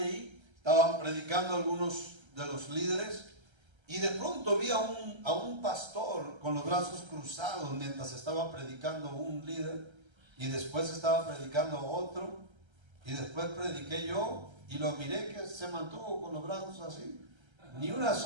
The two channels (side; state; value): left; late; 1.3 ms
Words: ahí, estaban predicando algunos de los líderes, y de pronto vi a un pastor con los brazos cruzados mientras estaba predicando un líder, y después estaba predicando otro, y después prediqué yo, y lo miré que se mantuvo con los brazos así, ni una